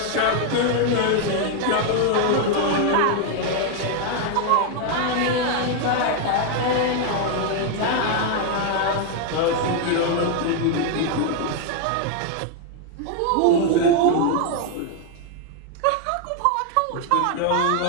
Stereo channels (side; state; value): both; different; correlation 0.00